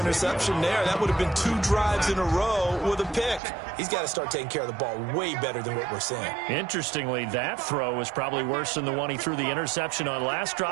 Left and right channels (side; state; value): left; drops out; at 3.4 s